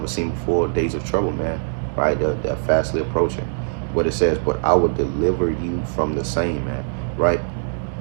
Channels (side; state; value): left; silent; digital silence